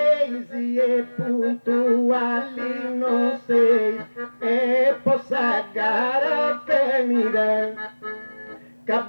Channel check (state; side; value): inverted; both; correlation -1.00